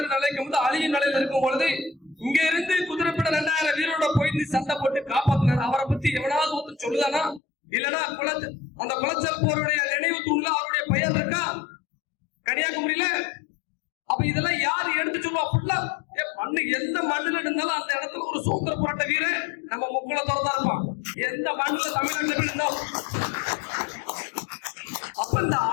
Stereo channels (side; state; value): right; drops out; at 7.4 s